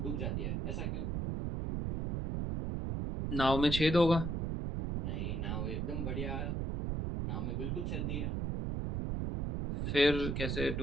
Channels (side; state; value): right; noise; rumble, 1 dB below the sound